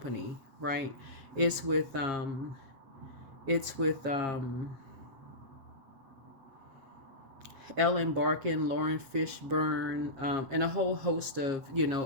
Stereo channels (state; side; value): late; left; 7.4 ms